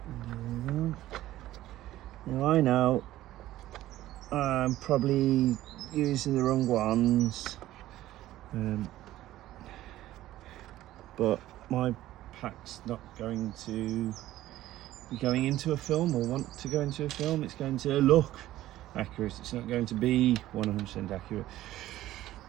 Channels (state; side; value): quieter; left; 14.7 dB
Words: And there we go. Now I know I'm probably using the wrong ones, but my pack's not going to be going into a film or want to go into a film. It's going to look accurate. It's not going to be 100% accurate.